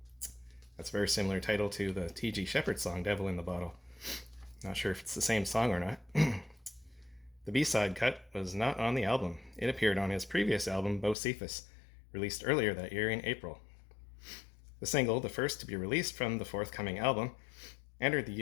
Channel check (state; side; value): drops out; right; at 11.2 s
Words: That's a very similar title to the T.G. Shepherd song Devil in the Bottle. Not sure if it's the same song or not. The B-side cut was not on the album. It appeared on his previous album, Bocephus, released earlier that year in April. The single, the first to be released from the forthcoming album, entered the